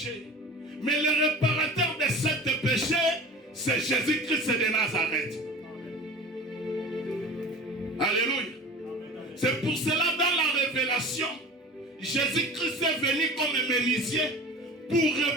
Mais le réparateur de ce péché, c'est Jésus-Christ de Nazareth. Alléluia. C'est pour cela, dans la révélation, Jésus-Christ est venu comme un menuisier pour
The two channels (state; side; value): normal; both; correlation 0.38